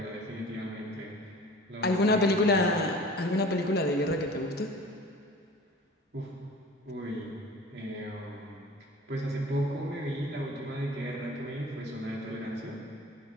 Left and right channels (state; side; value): normal; both; correlation 0.42